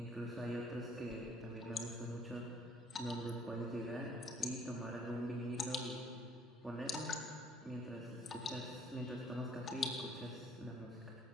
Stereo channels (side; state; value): both; normal; correlation 0.59